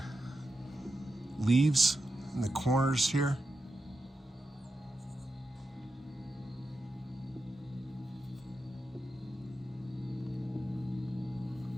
leaves in the corners here.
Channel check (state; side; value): normal; both; correlation 0.89